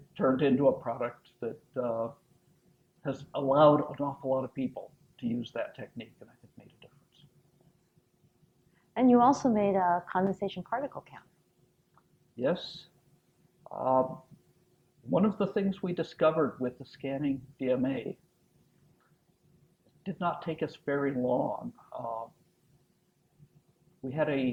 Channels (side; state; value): both; identical; correlation 1.00